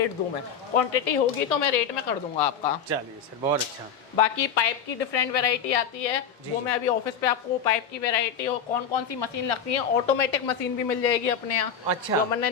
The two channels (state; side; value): quieter; right; 7.1 dB